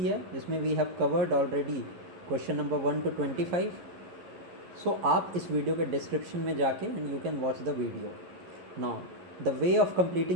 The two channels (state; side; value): late; left; 11 ms